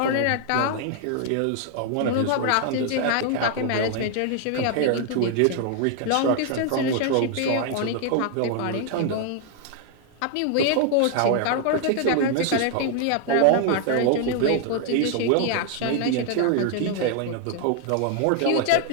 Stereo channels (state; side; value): different; both; correlation 0.00